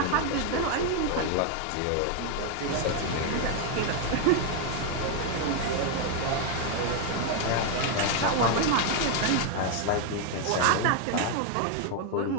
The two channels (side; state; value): both; different; correlation 0.01